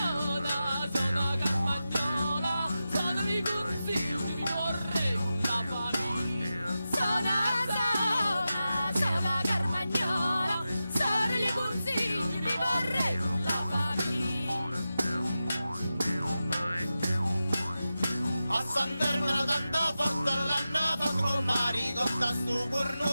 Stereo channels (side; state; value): both; inverted; correlation -0.92